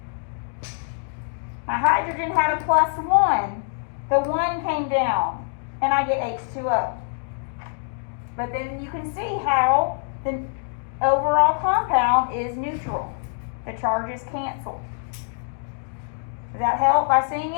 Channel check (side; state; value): right; silent; digital silence